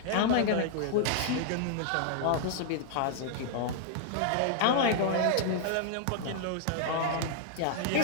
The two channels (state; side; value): different; both; correlation -0.01